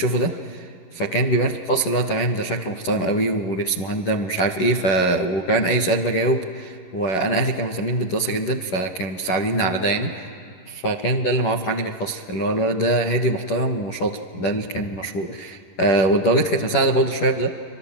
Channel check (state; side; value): late; right; 11 ms